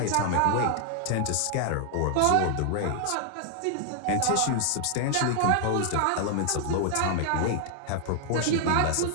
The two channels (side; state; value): both; different; correlation 0.00